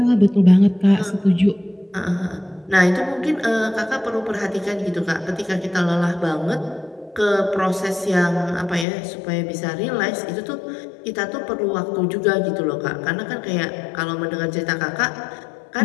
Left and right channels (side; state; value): right; drops out; at 8.8 s